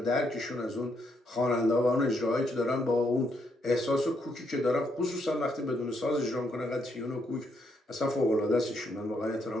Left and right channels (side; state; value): both; normal; correlation 0.76